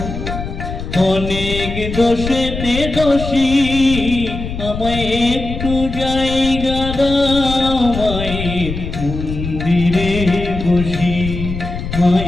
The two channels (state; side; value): noise; left; rumble, 7 dB below the sound